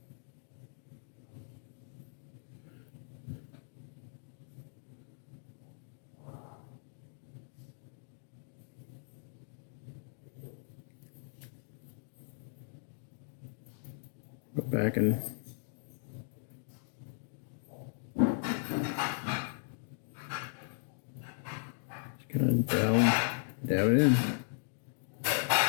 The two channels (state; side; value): silent; right; digital silence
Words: Go back and just kind of dab it in.